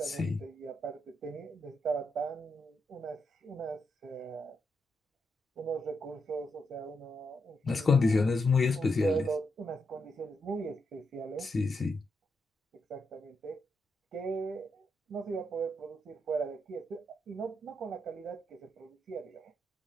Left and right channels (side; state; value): both; normal; correlation 0.82